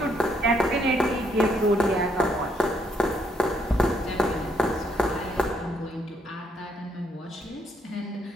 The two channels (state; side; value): normal; both; correlation 0.72